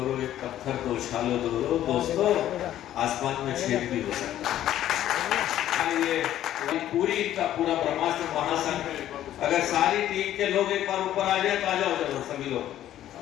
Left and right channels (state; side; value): quieter; right; 12.3 dB